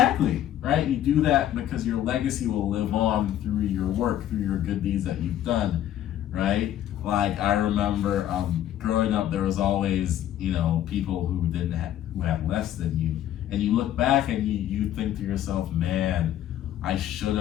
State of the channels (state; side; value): quieter; right; 11.8 dB